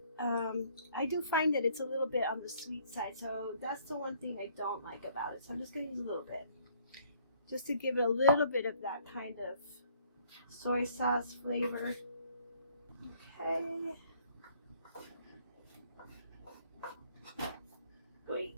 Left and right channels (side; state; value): both; inverted; correlation -0.61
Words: I do find that it's a little bit on the sweet side, so that's the one thing I don't like about it. So I'm just going to use a little bit, just to give it a little bit of that kind of soy sauce flavor. Okay. Wait.